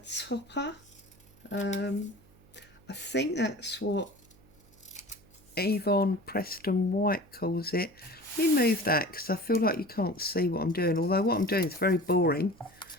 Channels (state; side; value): noise; right; hum, 27 dB below the sound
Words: I think that's what Yvonne Preston White calls it. Let me move that because I feel like you can't see what I'm doing, although what I'm doing is very boring.